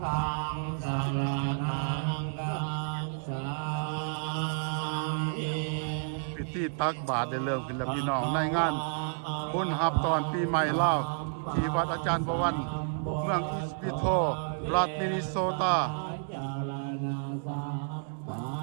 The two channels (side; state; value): left; silent; 57 dB below the other